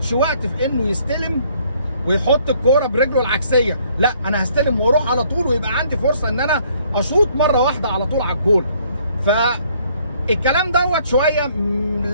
وقت في انه يستلم ويحط الكوره برجله العكسيه، لا انا هستلم واروح على طول ويبقى عندي فرصه ان انا اشوط مره واحده على طول على الجول. فالكلام دوت شويه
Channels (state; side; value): inverted; both; correlation -0.63